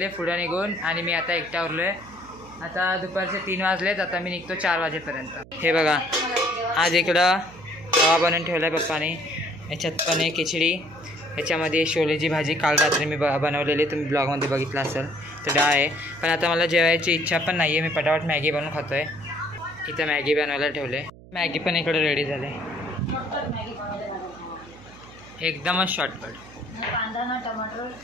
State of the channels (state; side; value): noise; right; hum, 20 dB below the sound